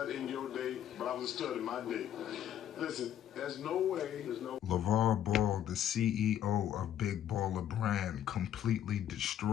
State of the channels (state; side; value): quieter; right; 10.5 dB